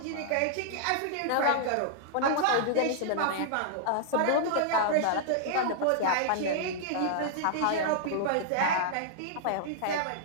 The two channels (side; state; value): both; different; correlation -0.01